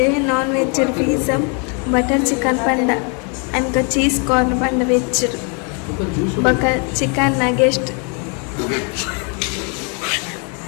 non veg pizza butter chicken ಪಂಡ ಅಂಕ ಚೀಸ್ ಕಾರ್ನ್ ಪಂಡ ವೆಜ್ ಬೊಕ್ಕ ಚಿಕನ್ ನಗೆಸ್ಟ್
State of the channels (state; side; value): quieter; right; 36.7 dB